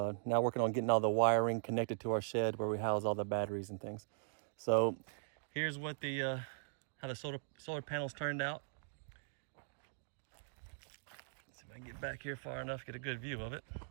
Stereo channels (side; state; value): left; silent; digital silence